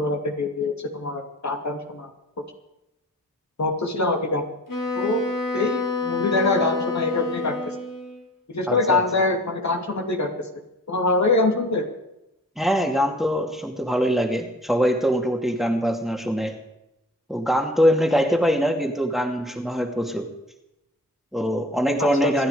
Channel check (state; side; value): normal; both; correlation 0.43